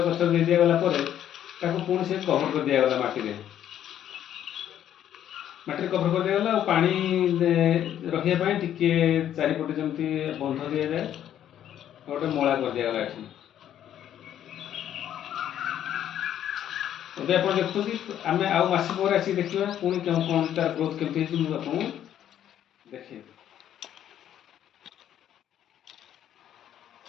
ଗଛ ଦେଇ ଦିଆଗଲା ପରେ ତାକୁ ପୁଣି ସେ କଭର କରି ଦିଆଗଲା ମାଟିରେ କଭର କରି ଦିଆଗଲା। ଆଉ ପାଣି ରଖିବା ପାଇଁ ଟିକେ ଚାରିପଟେ ଯେମିତି ବନ୍ଧ ଦିଆଯାଏ ଗୋଟେ ମଳା କରି ଦିଆଗଲା ଏଠି। ଏବେ ଆପଣ ଦେଖୁଛନ୍ତି ଆମେ ଆଉ ମାସେ ପରେ ଆସିକି ଦେଖିବା ପୁଣି କ'ଣ ତାର ଗ୍ରୋଥ କେମିତି ହେଇଛି ମୁଁ ଆପଣଙ୍କୁ ଦେଖେଇବି।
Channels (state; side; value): quieter; right; 10.7 dB